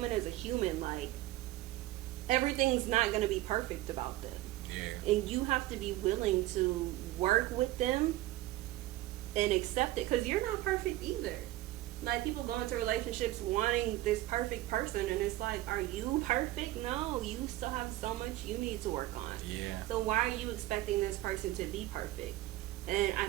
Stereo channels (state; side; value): quieter; left; 16.4 dB